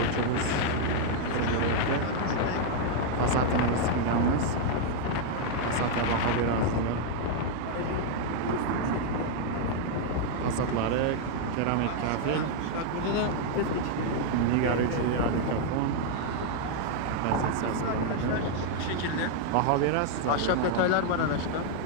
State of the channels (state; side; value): different; both; correlation 0.00